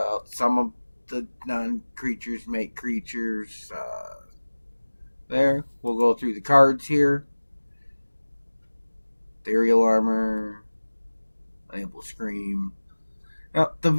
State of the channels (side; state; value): both; inverted; correlation -1.00